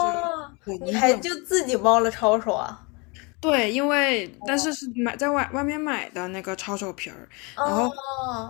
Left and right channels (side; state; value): right; quieter; 29.3 dB